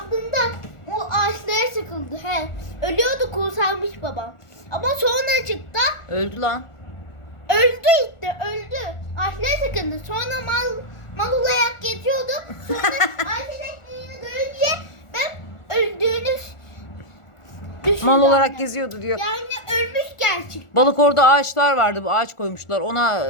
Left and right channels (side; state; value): right; late; 1.4 ms